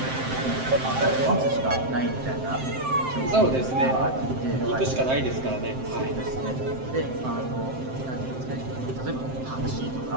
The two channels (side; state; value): left; late; 7.7 ms